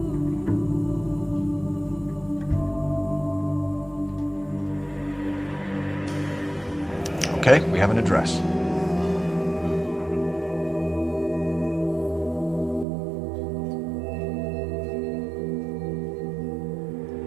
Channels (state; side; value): drops out; left; at 12.9 s